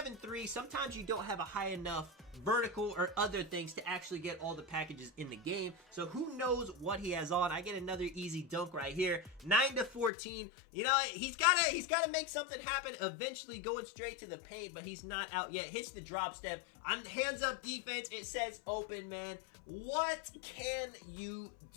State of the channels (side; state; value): right; drops out; at 10.1 s